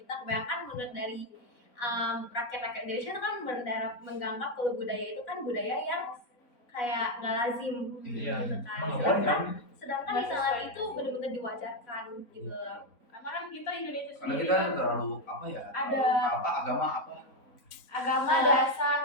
kebanyakan menurut dari rakyat-rakyat Indonesia itu kan menganggap kalau budaya itu kan budaya yang kayak nggak lazim Iya, gitu kan. emang nggak Sedangkan, boleh kan? sedangkan di sana itu benar-benar diwajarkan gitu. Karena kan kita Indonesia Karena sendiri kita kan terlalu apa ya? Ada- apa agama apa? agama dasar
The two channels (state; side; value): late; right; 4.0 ms